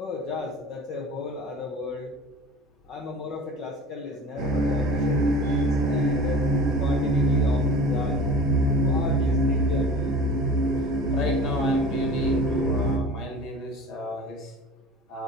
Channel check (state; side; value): normal; both; correlation 0.38